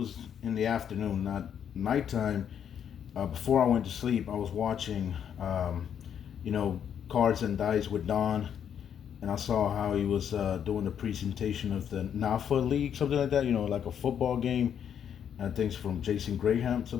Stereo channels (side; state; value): right; quieter; 8.7 dB